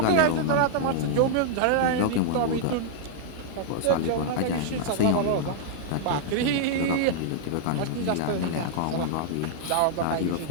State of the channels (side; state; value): both; different; correlation -0.01